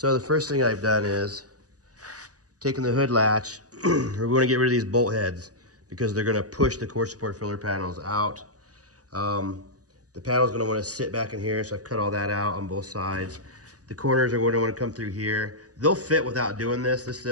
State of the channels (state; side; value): late; left; 0.67 ms